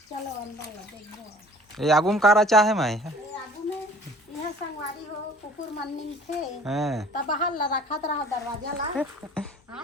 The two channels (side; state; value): both; normal; correlation 0.50